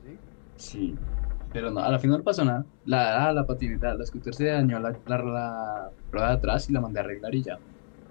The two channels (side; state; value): right; silent; digital silence